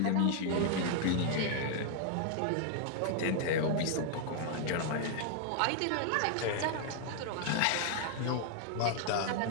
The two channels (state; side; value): different; both; correlation 0.00